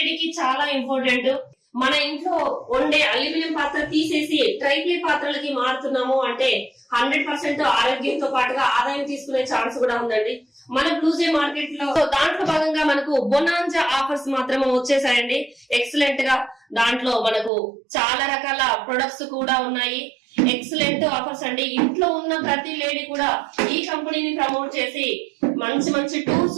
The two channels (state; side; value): drops out; left; at 17.5 s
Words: చాలా ఇంపార్టెంట్. మన ఇంట్లో వండే అల్యూమినియం పాత్ర తీసేసి ట్రైప్లే పాత్రలకి మారుతున్నాము అంటే 100% ఆరోగ్యంతో పాటుగా ఆదాయం తీసుకునే ఛాన్స్ కూడా ఉందండి మన బ్లూజే మార్కెట్ లో. దాంట్లో భాగంగా మనకు బొనాంజా ఆఫర్స్ మాత్రమే వచ్చేసాయండి. ఎక్సలెంట్ గా దాంట్లో మనకు చాలా రకాల ప్రొడక్ట్స్ కూడా ఉన్నాయి. ఎక్సలెంట్ ఆఫర్స్ అండి. ఇంట్లో ఉన్న ప్రతి లేడీ కూడా ఈ కంపెనీని ప్రమోట్ చేసి మంచి మంచి